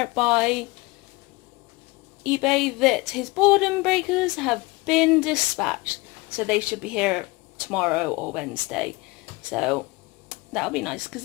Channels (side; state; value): right; quieter; 23.6 dB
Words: by eBay that his boredom breakers have been dispatched, so they should be here tomorrow or Wednesday, so that'll be nice because